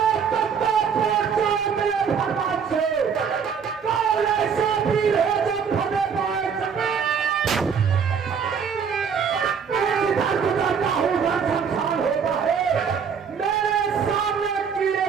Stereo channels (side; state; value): left; quieter; 6.7 dB